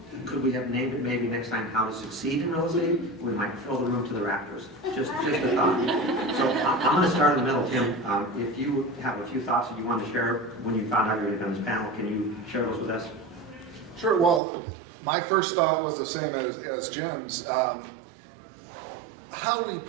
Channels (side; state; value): left; drops out; at 14.4 s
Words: Could we have named it maybe next time How to Succeed in Real Estate? We might fill the room to the rafters. Just a thought. So I'm going to start in the middle, Tim. If you have a few thoughts that you want to share when you found out you were going to be on this panel, can you share those with us? Sure. Well, my first thought was the same as Jim's. How we